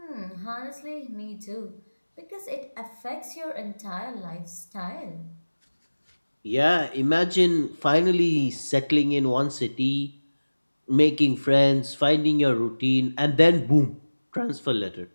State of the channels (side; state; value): both; inverted; correlation -1.00